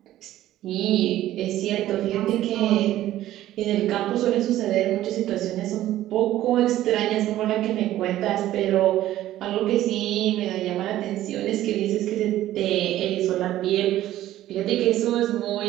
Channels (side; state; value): left; quieter; 13.9 dB